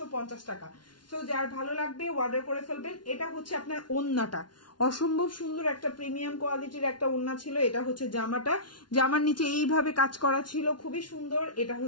টাকা। সো যার ভালো লাগবে অর্ডার করে ফেলবেন। এটা হচ্ছে আপনার ওড়নাটা, অসম্ভব সুন্দর একটা প্রিমিয়াম কোয়ালিটির একটা ওড়না ছিল। এটা হচ্ছে জামাটা, জামার নিচে এইভাবে কাজ করা ছিল, খুবই সুন্দর। এটা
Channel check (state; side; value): late; right; 0.70 ms